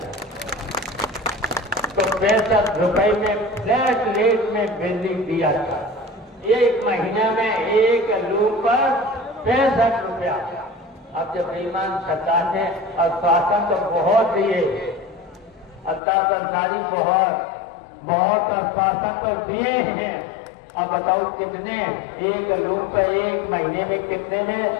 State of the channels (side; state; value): right; drops out; at 16.0 s